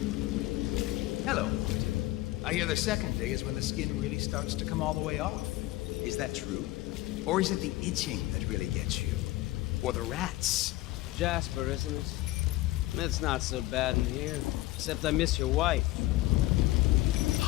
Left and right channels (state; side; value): quieter; right; 17.8 dB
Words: Hello, Martin. I hear the second day is when the skin really starts to come all the way off. Is that true? Or is it the itching that really gets you? Or the rats? Jasper, isn't it? It's not so bad in here, except I miss your wife.